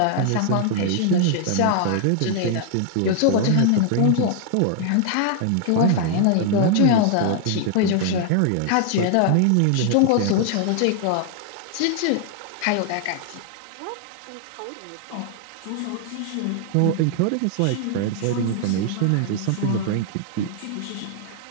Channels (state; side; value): different; both; correlation 0.00